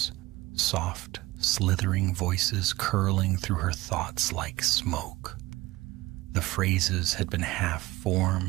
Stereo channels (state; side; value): quieter; left; 19.1 dB